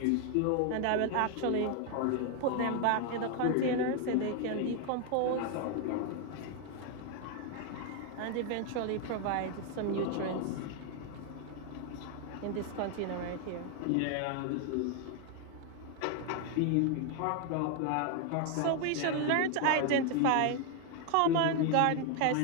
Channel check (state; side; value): different; both; correlation 0.01